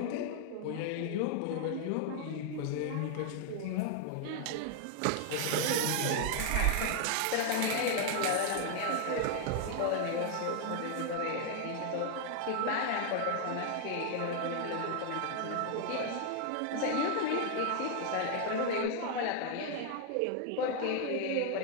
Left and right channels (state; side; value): different; both; correlation 0.00